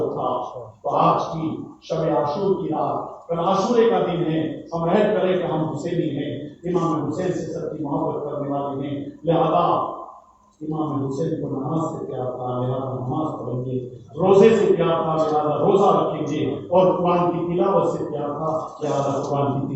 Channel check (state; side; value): identical; both; correlation 1.00